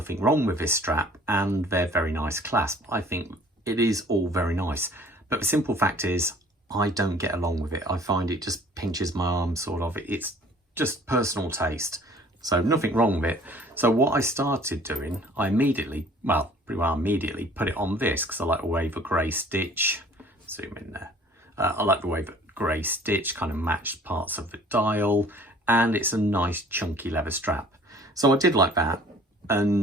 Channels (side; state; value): both; normal; correlation 0.52